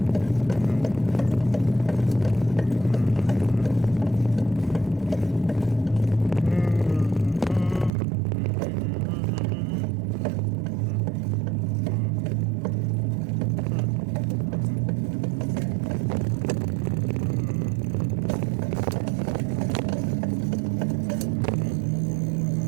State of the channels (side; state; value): left; drops out; at 7.9 s